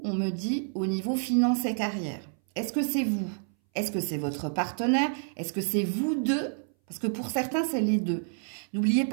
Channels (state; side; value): silent; left; 59 dB below the other